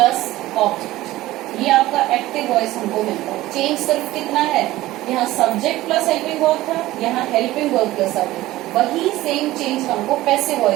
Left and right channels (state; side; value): quieter; left; 16.7 dB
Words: object, ये आपका एक्टिव वॉइस हमको मिलता है। चेंज सिर्फ कितना है, यहाँ सब्जेक्ट प्लस हेल्पिंग वर्ब था, यहाँ हेल्पिंग वर्ब प्लस सब्जेक्ट, वही सेम चेंज हमको पैसिव